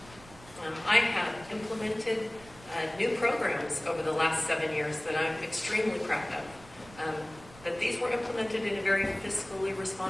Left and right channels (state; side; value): noise; right; rumble, 21 dB below the sound